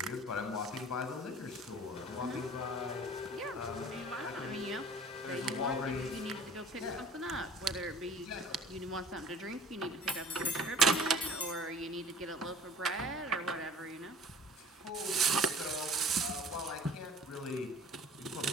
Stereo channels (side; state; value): both; normal; correlation 0.47